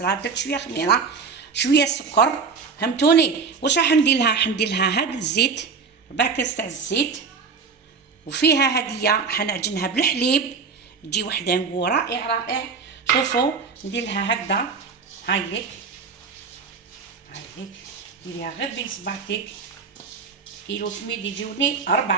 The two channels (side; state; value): left; quieter; 5.3 dB